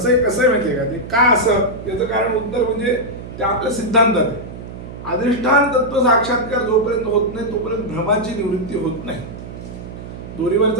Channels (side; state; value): right; noise; hum, 12 dB below the sound